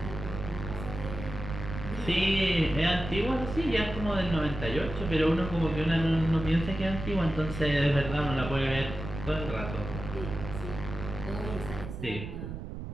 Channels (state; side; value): noise; right; rumble, 8 dB below the sound